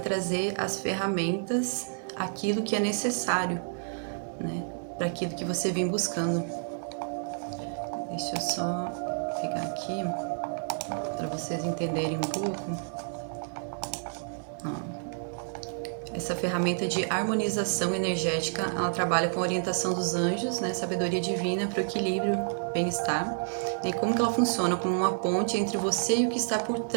as ferramentas, aquilo que é necessário, né, para aquilo que você vem buscando. Deixa eu só pegar aqui para vocês entenderem um pouco. Essa ferramenta de harmonização energética, ela trabalha com a orientação dos anjos, né, sabedoria divina para o equilíbrio, bem-estar. E como que ela funciona? Como uma ponte entre você e o que está por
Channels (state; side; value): silent; left; digital silence